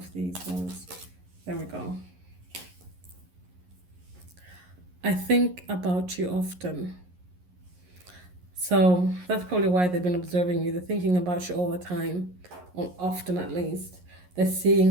these ones. There we go. I think about you often. So that's probably why they've been observing you. They're thinking about you all the time, or often at least. They're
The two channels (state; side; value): late; left; 11 ms